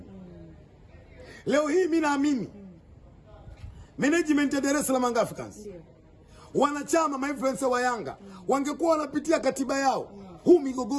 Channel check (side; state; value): both; identical; correlation 1.00